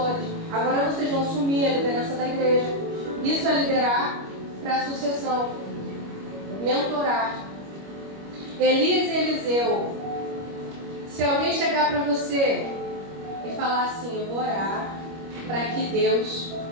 agora vocês vão assumir a liderança da igreja. Isso é liderar para a sucessão, mentorar. Elias e Eliseu, se alguém chegar para você e falar assim: eu vou orar para que Deus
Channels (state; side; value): late; left; 25 ms